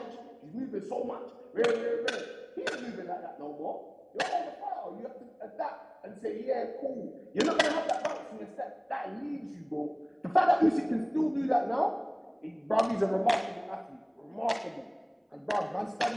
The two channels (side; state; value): both; identical; correlation 1.00